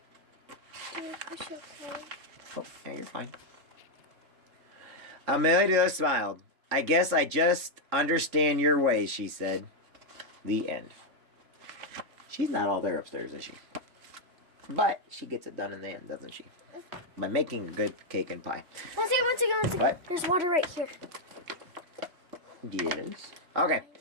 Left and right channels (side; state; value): left; late; 3.5 ms